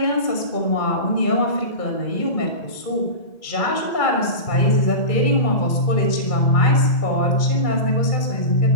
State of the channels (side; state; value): right; late; 2.3 ms